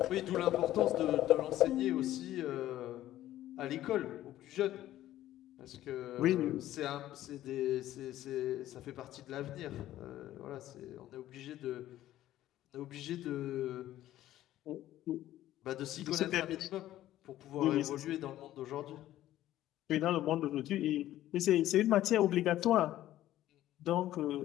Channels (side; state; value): right; quieter; 13.7 dB